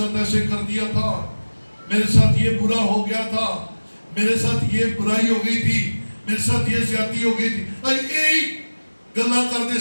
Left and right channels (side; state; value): both; inverted; correlation -1.00